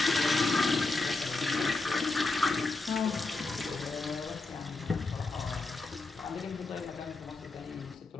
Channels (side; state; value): right; quieter; 3.5 dB